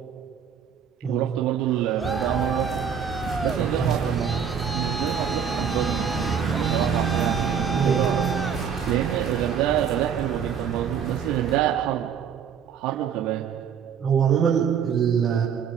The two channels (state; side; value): quieter; left; 7.6 dB